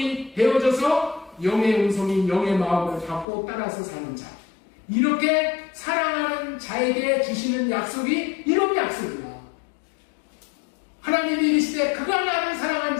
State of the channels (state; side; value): drops out; right; at 3.2 s